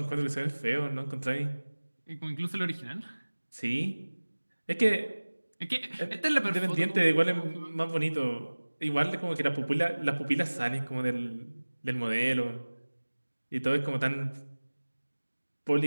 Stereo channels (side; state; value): both; inverted; correlation -1.00